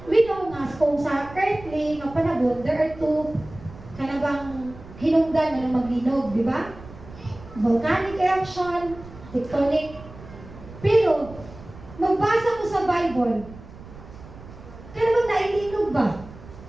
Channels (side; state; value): right; noise; rumble, 17 dB below the sound